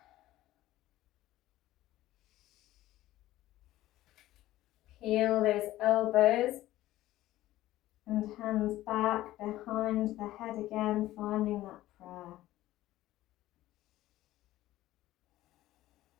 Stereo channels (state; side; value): quieter; right; 15.4 dB